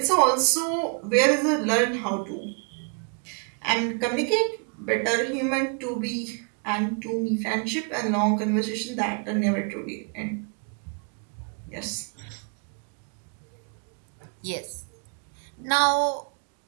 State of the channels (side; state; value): left; quieter; 37.5 dB